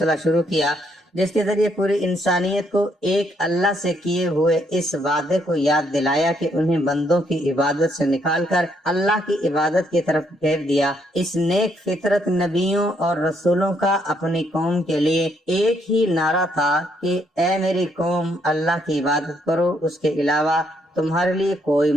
شروع کیا، جس کے ذریعے پوری انسانیت کو ایک اللہ سے کیے ہوئے اس وعدے کو یاد دلایا کہ انہیں بندوں کی عبادت سے نکال کر اللہ کی عبادت کی طرف پھیر دیا۔ اس نیک فطرت نبیوں اور رسولوں کا اپنی قوم کے لیے ایک ہی نعرہ تھا کہ اے میری قوم، اللہ کی عبادت کرو، اس کے علاوہ تمہارے لیے کوئی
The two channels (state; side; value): normal; both; correlation 0.73